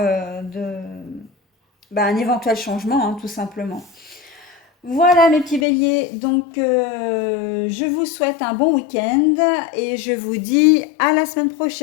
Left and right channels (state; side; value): drops out; right; at 5.7 s